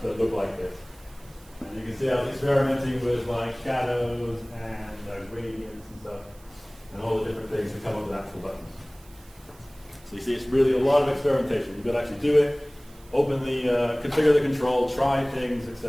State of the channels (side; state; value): right; noise; hiss, 26 dB below the sound